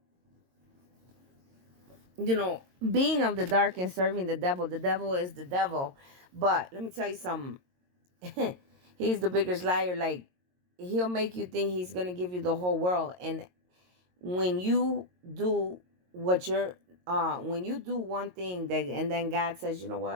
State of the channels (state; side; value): late; left; 22 ms